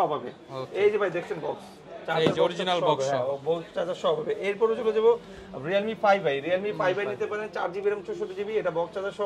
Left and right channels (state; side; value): identical; both; correlation 1.00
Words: হবে। এই যে ভাই দেখছেন বক্স চার্জার অরিজিনাল বক্স, হ্যাঁ বক্স চার্জার সব হবে। এরপরে চলে যাব Realme 5i নিতে পারেন 4GB RAM 64GB, এটা বক্স চার্জার